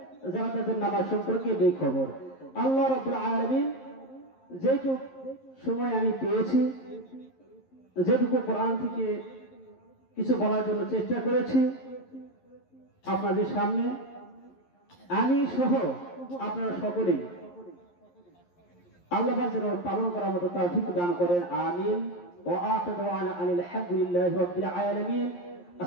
যারা তাদের নামাজ সম্পর্কে বেখবর। আল্লাহ রাব্বুল আলামিন যেটুকু সময় আমি পেয়েছি, যেটুকু কোরআন থেকে কিছু বলার জন্য চেষ্টা করেছি আপনাদের সামনে, আমি সহ আপনারা সকলেই আল্লাহ যেন পালন করার মতো তৌফিক দান করেন। আমিন। ওয়া আখিরু দাওয়ানা আনিল হামদুলিল্লাহি রাব্বিল আলামিন।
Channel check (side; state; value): right; late; 11 ms